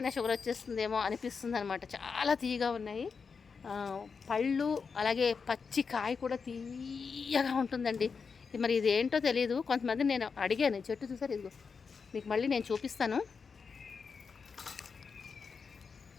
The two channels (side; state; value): right; quieter; 5.5 dB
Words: షుగర్ వచ్చేస్తుందేమో అనిపిస్తుంది అనమాట. చాలా తీయగా ఉన్నాయి పళ్ళు. అలాగే పచ్చి కాయ కూడా తీయగా ఉంటుందండి. మరి ఇది ఏంటో తెలియదు. కొంతమంది నేను అడిగాను, చెట్టు చూసారు ఇదిగో, మీకు మళ్ళీ నేను చూపిస్తాను.